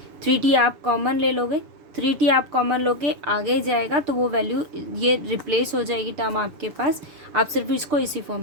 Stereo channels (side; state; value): left; late; 7.0 ms